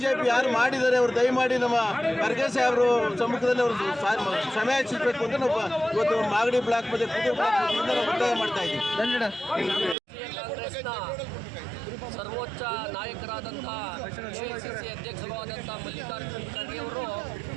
ಯಾರು ಮಾಡಿದ್ದಾರೆ ಅವರು ದಯಮಾಡಿ ನಮ್ಮ ಖರ್ಗೆ ಸಾಹೇಬರು ಸಮ್ಮುಖದಲ್ಲಿ ಅವರು ಕ್ಷಮೆ ಯಾಚಿಸಬೇಕು ಅಂತ ನಾವು ಇವತ್ತು ಮಾಗಡಿ ಬ್ಲಾಕ್ ಮತ್ತೆ ಕುದುರೆ ಬ್ಲಾಕ್ ಒತ್ತಾಯ ಮಾಡ್ತಾ ಇದ್ದೀವಿ. ಕಾಂಗ್ರೆಸ್ನ ಸರ್ವೋಚ್ಚ ನಾಯಕರಾದಂಥ AICC ಅಧ್ಯಕ್ಷರು ಆದಂಥ ಮಲ್ಲಿಕಾರ್ಜುನ ಖರ್ಗೆ ಅವರು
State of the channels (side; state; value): left; drops out; at 10.0 s